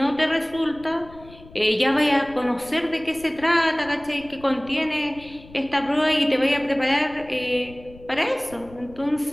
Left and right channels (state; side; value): noise; left; rumble, 21 dB below the sound